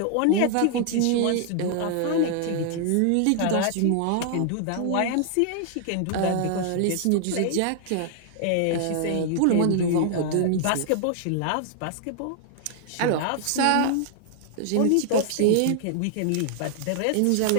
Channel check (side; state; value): both; different; correlation -0.01